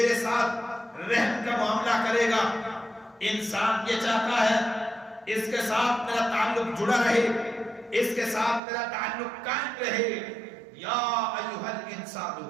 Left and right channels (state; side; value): drops out; left; at 8.6 s